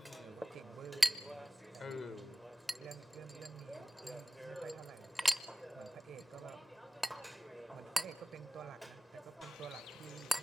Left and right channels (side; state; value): both; normal; correlation 0.97